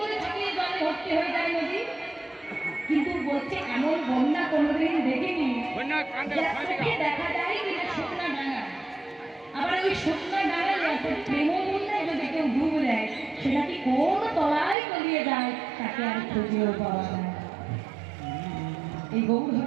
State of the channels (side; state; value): left; drops out; at 14.8 s